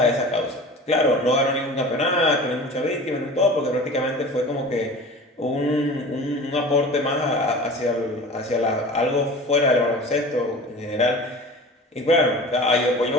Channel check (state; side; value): normal; both; correlation 0.38